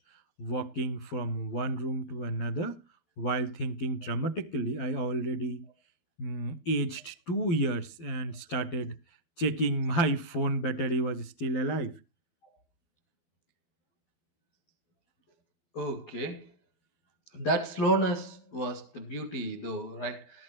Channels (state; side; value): late; right; 12 ms